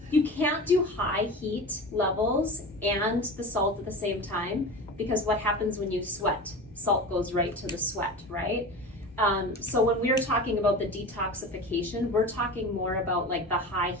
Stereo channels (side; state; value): both; normal; correlation 0.31